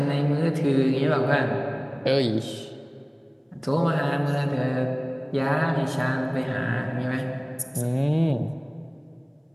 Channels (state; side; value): identical; both; correlation 1.00